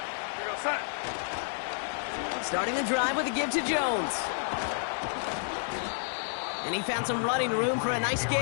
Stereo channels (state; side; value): silent; right; digital silence